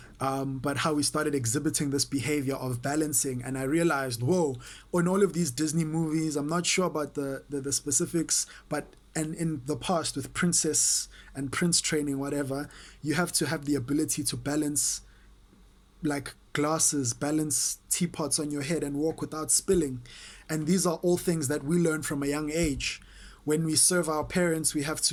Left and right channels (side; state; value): both; identical; correlation 1.00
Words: But how we started exhibiting this behavior of balancing. And I realized, whoa, in all of these Disney movies, I'm not sure about the specifics, but and in the past with princess and prince training, whatever, you have to have the ability to balance like glasses, balance teapots on your head and walk without spilling. And these are all things that we learn from a young age. When we serve our parents, we have